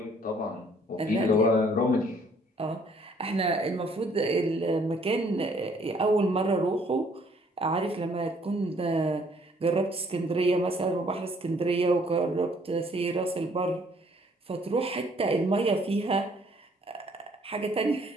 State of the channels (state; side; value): normal; both; correlation 0.62